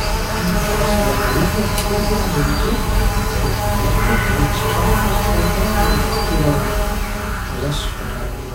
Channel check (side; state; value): both; identical; correlation 1.00